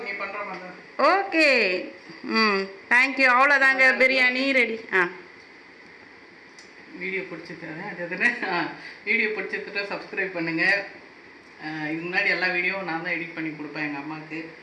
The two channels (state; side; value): identical; both; correlation 1.00